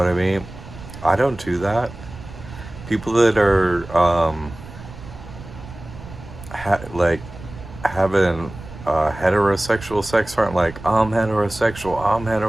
I mean? I don't do that. People that are like having heterosexual sex aren't like I'm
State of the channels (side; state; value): right; noise; rumble, 15 dB below the sound